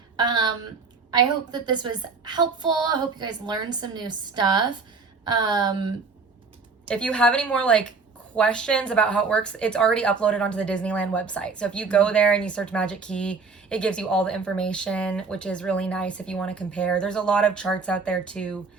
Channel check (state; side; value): quieter; left; 4.6 dB